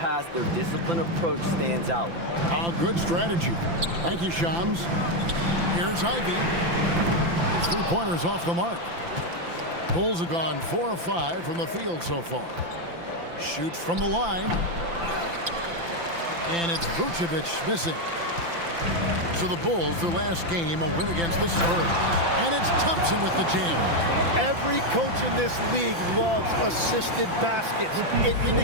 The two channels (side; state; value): left; late; 5.9 ms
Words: their disciplined approach stands out. A good strategy. Thank you, Shams. Here's Ivy. His 3-pointers off the mark. Bulls have gone 4 of 5 from the field so far. Shoots from the line. And it's Vucevic missing. So the Bulls, their last game, a win against the Spurs. And it's Thompson with the jam. Every coach in this league loves assisted baskets. It